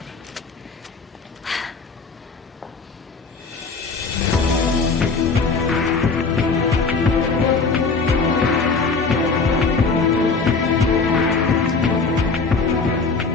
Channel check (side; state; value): right; quieter; 4.5 dB